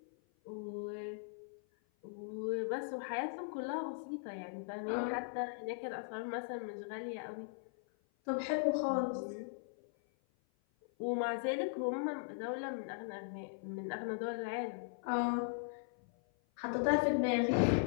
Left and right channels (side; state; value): right; silent; 52 dB below the other